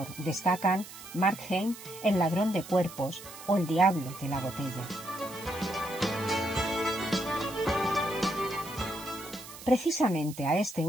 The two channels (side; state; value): right; noise; hiss, 15 dB below the sound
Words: destacan Markheim, El ladrón de cuerpos o El diablo de la botella. Precisamente a este